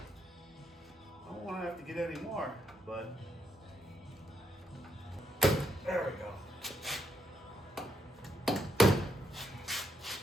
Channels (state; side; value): normal; both; correlation 0.76